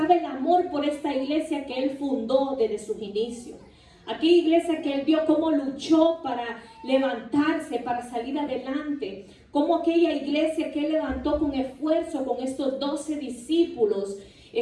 el amor por esta iglesia que él fundó desde sus inicios. Aquella iglesia que él vio cómo luchó para levantarse, para salir adelante. Cómo aquella iglesia que él levantó con esfuerzo, con estos 12 discípulos,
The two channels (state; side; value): identical; both; correlation 1.00